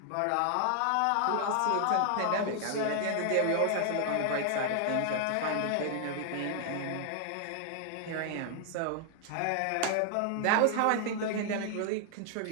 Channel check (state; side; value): different; both; correlation 0.00